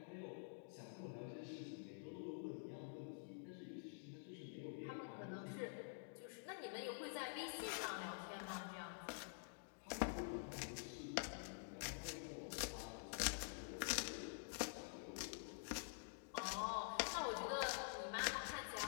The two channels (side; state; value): right; silent; digital silence